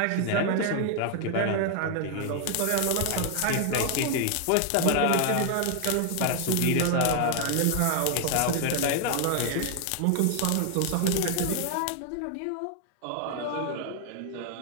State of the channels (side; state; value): both; different; correlation 0.00